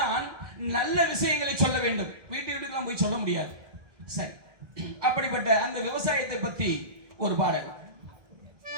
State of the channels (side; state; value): left; late; 1.6 ms